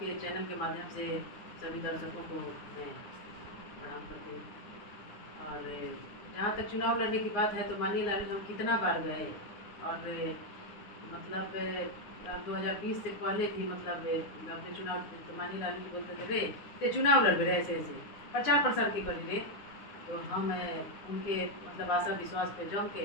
चैनल के माध्यम से सभी दर्शकों को मैं प्रणाम करती हूँ। और जहाँ तक चुनाव लड़ने की बात है तो मानिए लाल हम कितना बार गए और मतलब 2020 से पहले भी मतलब अपने चुनाव तो मानिए लाल जी बोलते थे रे ते चुनाव लड़ रहे ऐसे ऐसे प्रचार प्रसार के करी रे। तो हम उनके मतलब आशा विश्वास पे जम के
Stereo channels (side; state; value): right; late; 9.5 ms